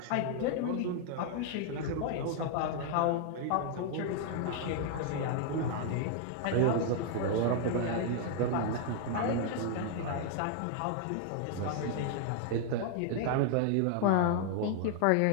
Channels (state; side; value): different; both; correlation 0.00